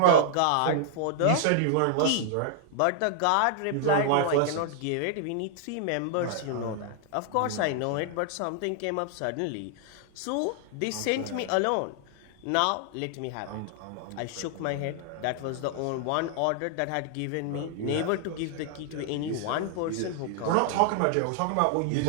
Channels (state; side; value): different; both; correlation 0.00